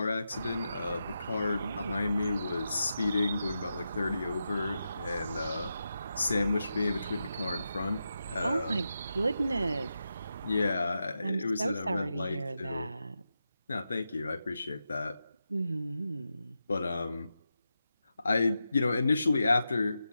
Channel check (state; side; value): inverted; both; correlation -0.88